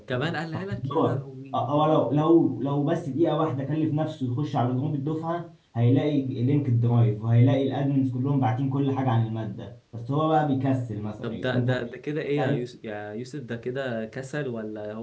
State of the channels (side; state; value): both; identical; correlation 1.00